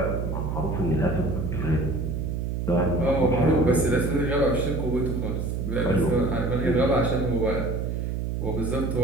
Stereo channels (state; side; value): noise; right; hum, 2 dB below the sound